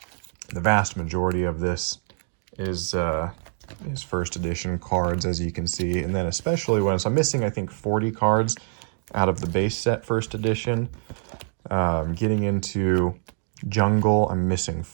the vast majority of this is first edition cards, as you can see. And then especially when I'm missing, I think, 40 cards out of the base set first edition. Getting into Jungle, I'm missing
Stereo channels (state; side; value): silent; left; digital silence